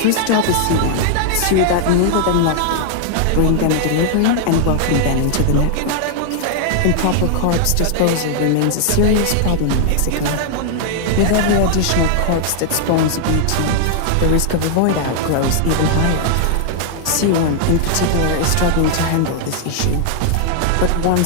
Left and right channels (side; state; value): both; different; correlation -0.01